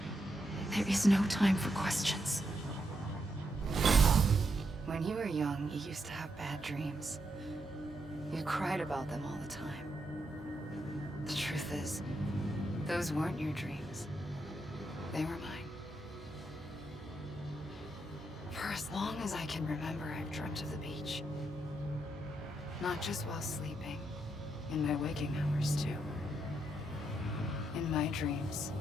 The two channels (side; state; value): both; normal; correlation 0.81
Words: There is no time for questions. When you were young, you used to have bad dreams. You cried about them all the time. The truth is, those weren't your dreams. They were mine. For as long as I can remember, I've dreamt of the beach. Not just while sleeping, In my waking hours, too. In my dreams,